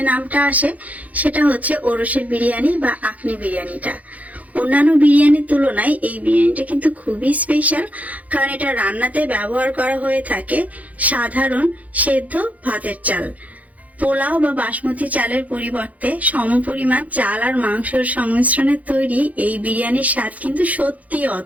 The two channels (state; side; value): late; left; 0.073 ms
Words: নামটা আসে সেটা হচ্ছে ওরসের বিরিয়ানি বা আখনি বিরিয়ানিটা। অন্যান্য বিরিয়ানির তুলনায় এই বিরিয়ানিটা কিন্তু খুবই স্পেশাল, কারণ এটা রান্নাতে ব্যবহার করা হয়ে থাকে সাধারণ সেদ্ধ ভাতের চাল। পোলাও বা বাসমতি চালের পরিবর্তে সমপরিমাণ চাল আর মাংসের সংমিশ্রণে তৈরি এই বিরিয়ানির স্বাদ কিন্তু সত্যি